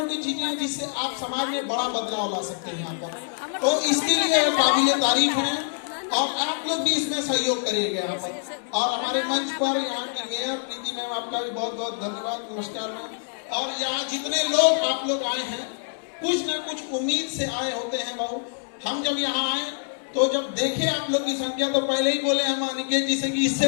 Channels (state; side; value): silent; right; 61 dB below the other